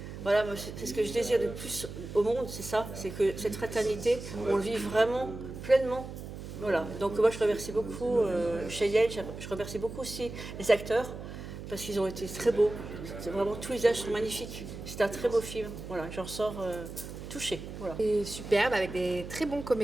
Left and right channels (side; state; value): right; noise; hum, 10 dB below the sound